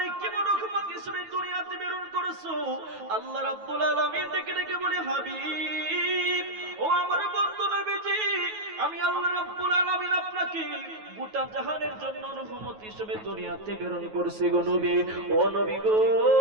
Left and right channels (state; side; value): late; left; 9.3 ms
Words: কেমন রহমত হিসেবে দুনিয়াতে প্রেরণ করেছো? আল্লাহ রাব্বুল আলামিন ডেকে ডেকে বলে, হাবিব ও আমার বন্ধু নবীজি, আমি আল্লাহ রাব্বুল আলামিন আপনাকে গোটা জাহানের জন্য রহমত হিসেবে দুনিয়াতে প্রেরণ করেছি গো নবী। ও নবী গো,